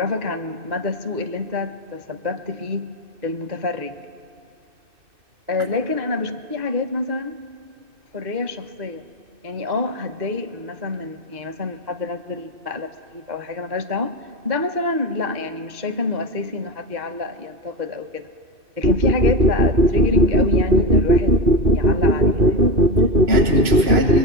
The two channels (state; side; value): late; left; 2.6 ms